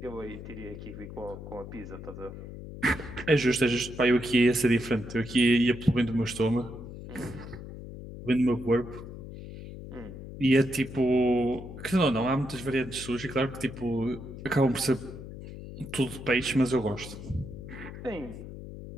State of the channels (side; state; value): left; noise; hum, 12 dB below the sound